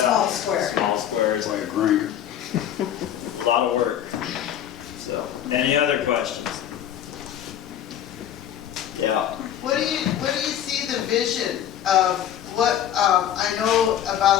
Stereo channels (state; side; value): quieter; right; 10.3 dB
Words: square. Small squares. By a grinder. A lot of work. So, any other questions? Yeah. What do you see the vision of what, I know